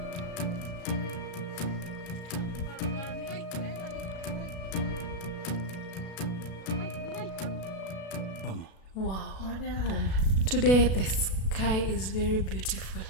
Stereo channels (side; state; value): right; late; 37 ms